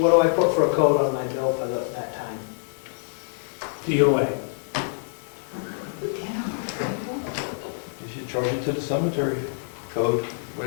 do I put for a code on my bill for that time? DOA. You should charge it to the cemetery code,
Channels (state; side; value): silent; right; 61 dB below the other